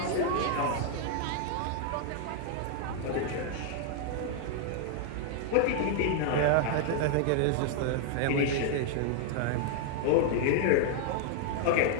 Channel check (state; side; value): different; both; correlation -0.01